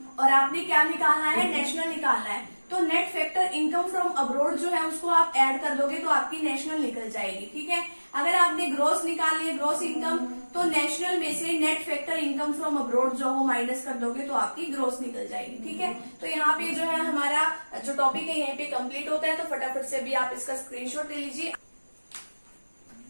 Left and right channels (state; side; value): inverted; both; correlation -1.00